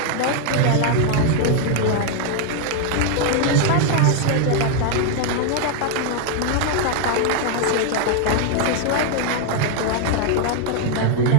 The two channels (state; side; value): different; both; correlation 0.00